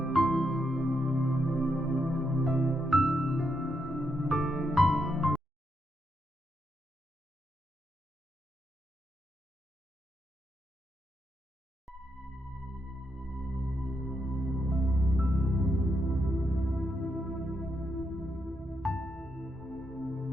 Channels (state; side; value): normal; both; correlation 0.81